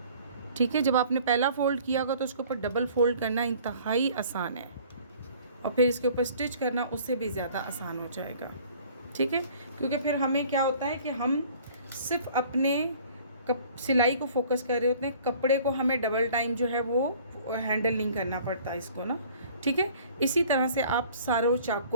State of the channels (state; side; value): inverted; both; correlation -0.52